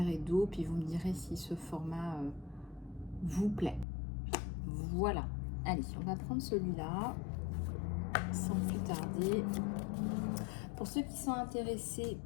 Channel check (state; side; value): drops out; right; at 3.9 s